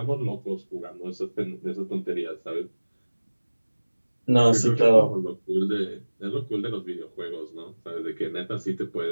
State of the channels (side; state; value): both; inverted; correlation -1.00